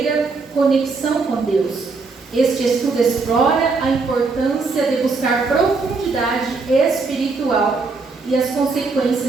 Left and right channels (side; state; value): left; quieter; 4.2 dB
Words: conexão com Deus. Este estudo explora a importância de buscar profundidade espiritual e as